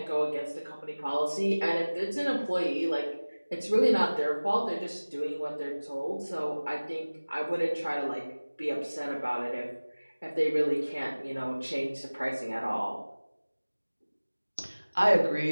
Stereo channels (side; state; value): both; inverted; correlation -1.00